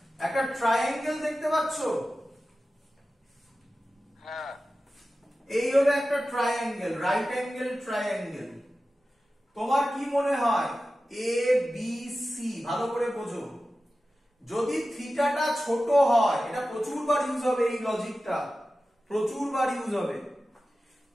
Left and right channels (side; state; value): both; normal; correlation 0.94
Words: একটা ট্রায়াঙ্গেল দেখতে পাচ্ছ? হ্যাঁ। এই হলো একটা ট্রায়াঙ্গেল, রাইট অ্যাঙ্গেল ট্রায়াঙ্গেল। তোমার কি মনে হয় এ বি সি? ভালো করে বোঝো, যদি থিটাটা ছোট হয়, এটা প্রচুরবার ইউজ হবে, এই লজিকটা প্রচুরবার ইউজ হবে।